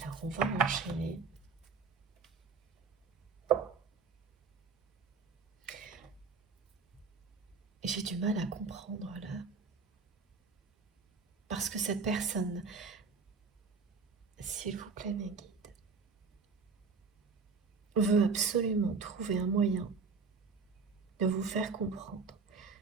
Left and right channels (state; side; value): quieter; left; 4.8 dB